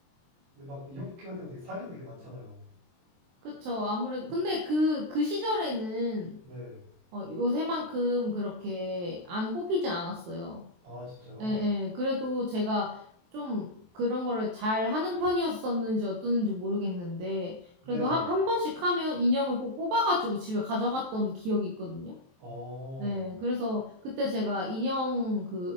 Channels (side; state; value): left; late; 23 ms